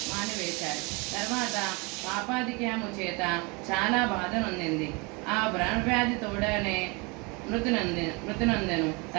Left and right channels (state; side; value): quieter; left; 28.6 dB